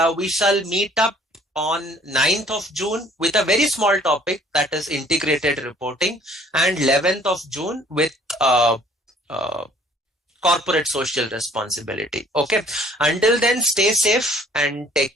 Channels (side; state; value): both; normal; correlation 0.56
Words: we shall meet up on 9th of June with a very small topic, that is integrated reporting, and 11th of June with corporate social responsibility. Okay. Until then, stay safe and take